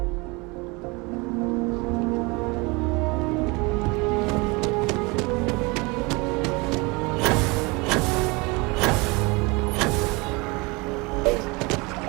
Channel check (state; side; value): quieter; left; 26.5 dB